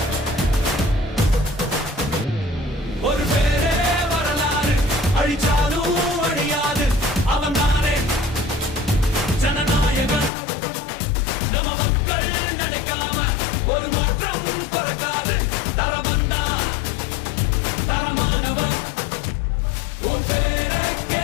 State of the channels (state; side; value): drops out; right; at 10.3 s